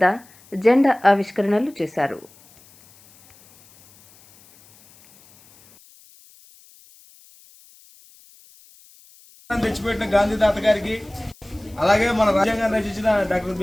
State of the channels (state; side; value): noise; left; hiss, 27 dB below the sound